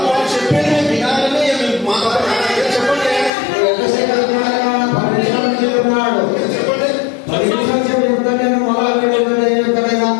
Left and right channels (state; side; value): drops out; right; at 3.3 s